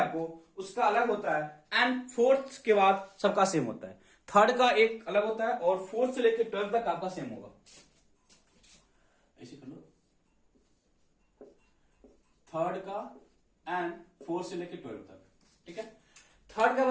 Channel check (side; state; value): both; identical; correlation 1.00